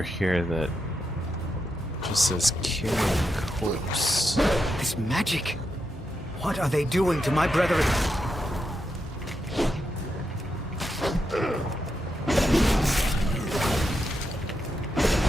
here that just says Kyrian corpse. This magic. What are they doing to my brethren?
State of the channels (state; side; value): normal; both; correlation 0.85